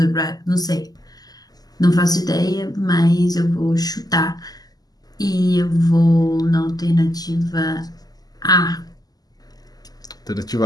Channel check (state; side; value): late; right; 0.18 ms